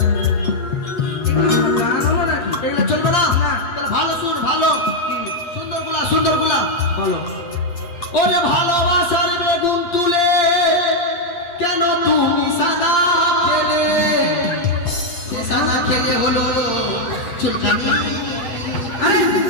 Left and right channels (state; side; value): late; right; 8.6 ms